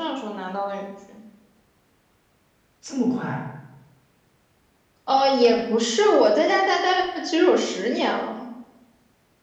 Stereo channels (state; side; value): identical; both; correlation 1.00